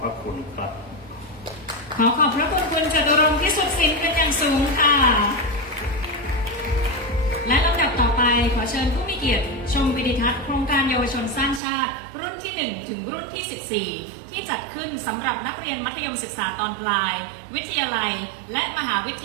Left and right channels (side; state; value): left; drops out; at 11.6 s